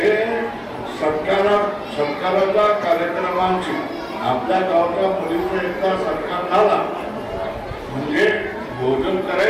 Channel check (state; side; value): identical; both; correlation 1.00